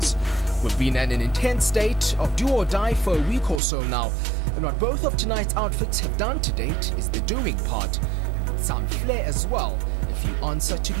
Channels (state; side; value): drops out; left; at 3.6 s